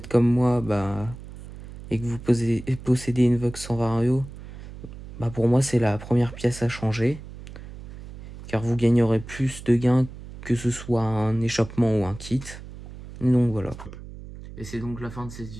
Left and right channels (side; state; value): right; noise; hum, 14 dB below the sound